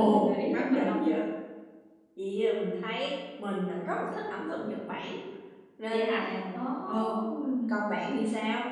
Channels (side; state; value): both; identical; correlation 1.00